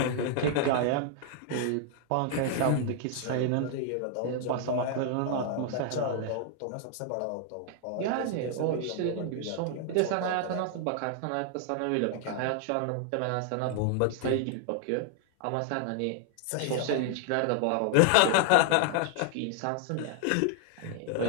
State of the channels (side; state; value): both; different; correlation 0.00